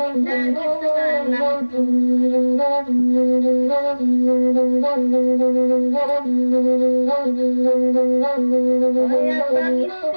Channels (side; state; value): both; inverted; correlation -1.00